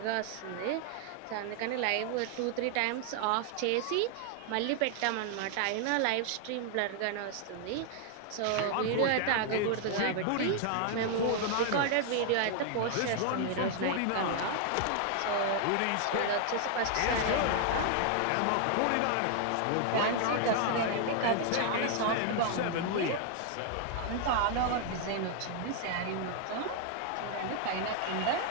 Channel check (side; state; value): both; different; correlation 0.00